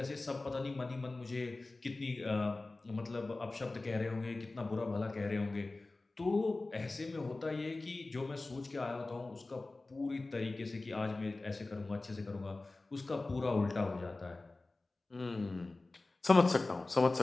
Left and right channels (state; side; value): quieter; right; 3.2 dB